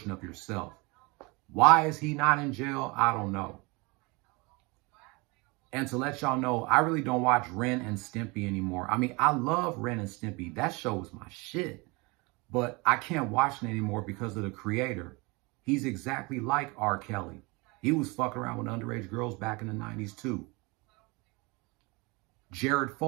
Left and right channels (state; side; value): quieter; left; 26.6 dB